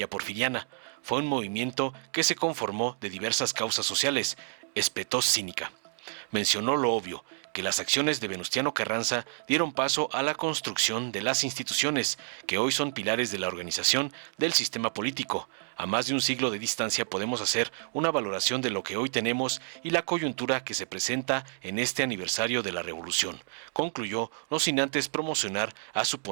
porfiriana. Fue un movimiento que se conformó de diversas causas sociales, espetó cínica. Mencionó lo obvio, que las acciones de Venustiano Carranza dieron paso a la construcción de las instituciones, que hoy son pilares de la organización del sistema político. A más de un siglo de distancia podemos hacer una valoración de lo que hoy tenemos y la coyuntura que se presenta en este aniversario de la Revolución, concluyó, no sin antes promocionar a su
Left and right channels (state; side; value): silent; left; 58 dB below the other